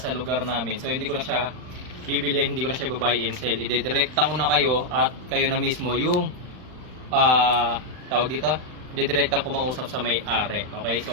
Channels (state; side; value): late; left; 39 ms